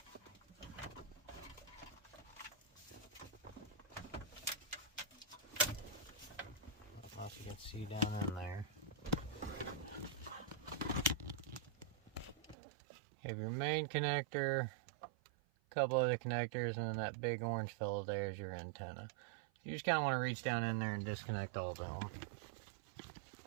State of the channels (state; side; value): drops out; left; at 12.6 s